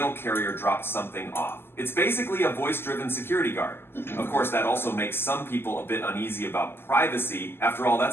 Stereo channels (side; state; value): right; late; 0.11 ms